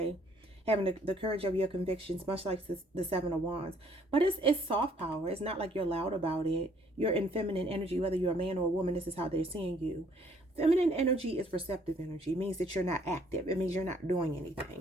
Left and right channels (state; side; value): normal; both; correlation 0.63